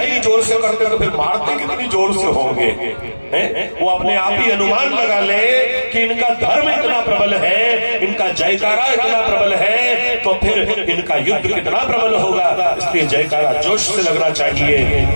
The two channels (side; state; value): both; inverted; correlation -1.00